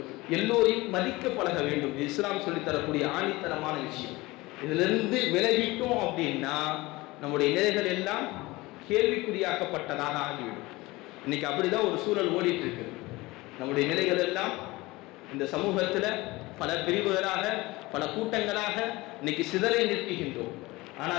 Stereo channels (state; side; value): quieter; right; 21.1 dB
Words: எல்லோரையும் மதிக்க பழக வேண்டும். இஸ்லாம் சொல்லித்தரக்கூடிய ஆணித்தரமான விஷயம். இதிலிருந்து விலகிட்டோம் அப்படின்னா நம்முடைய நிலைகள் எல்லாம் கேள்விக்குறியாக்கப்பட்டதாக ஆகிவிடும். இன்னைக்கு அப்படிதான் ஒரு சூழல் ஓடிட்டு இருக்கு. நம்முடைய நிலைகள் எல்லாம் இந்த சமூகத்துல பல பிரிவுகளாக, பல கூட்டங்களாக இன்னைக்கு சிதறை நிற்கின்றோம்.